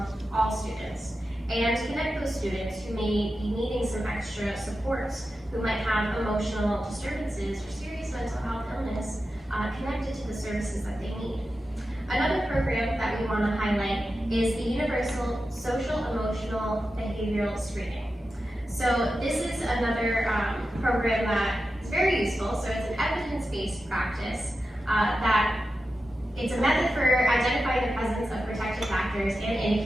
all students, and connect those students who may be needing some extra supports, who might have emotional disturbances or serious mental health illness connected to the services that they need. Another program that we want to highlight is the Universal Social Emotional Behavioral Screening. So this is another program that is very useful. So it's an evidence-based practice that it's a method for identifying the presence of protective factors and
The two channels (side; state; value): both; normal; correlation 0.91